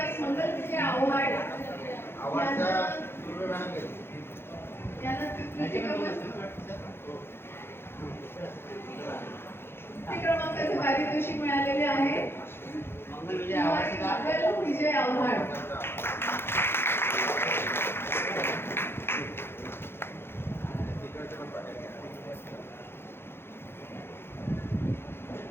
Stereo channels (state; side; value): late; right; 0.11 ms